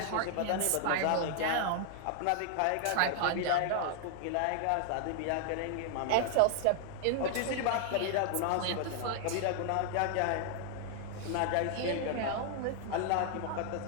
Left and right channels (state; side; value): different; both; correlation 0.00